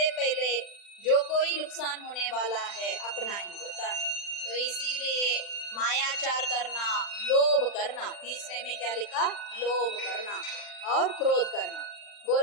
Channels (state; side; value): late; right; 40 ms